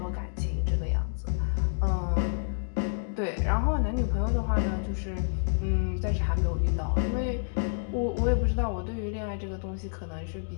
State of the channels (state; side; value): silent; right; digital silence